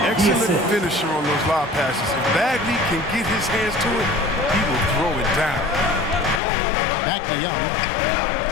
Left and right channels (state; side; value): drops out; right; at 6.4 s